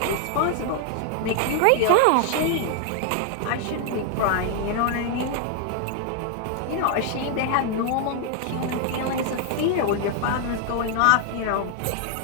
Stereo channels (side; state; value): both; different; correlation 0.00